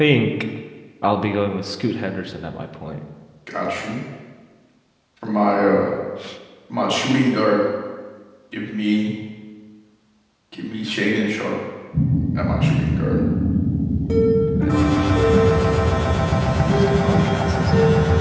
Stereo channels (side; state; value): both; identical; correlation 1.00